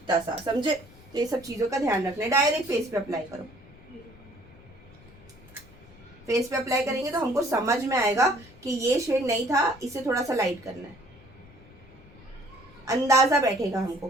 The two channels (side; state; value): left; noise; rumble, 23 dB below the sound